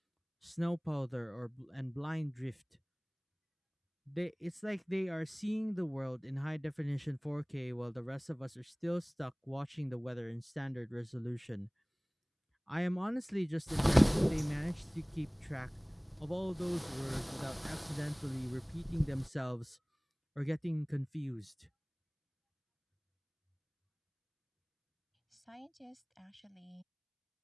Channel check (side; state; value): both; identical; correlation 1.00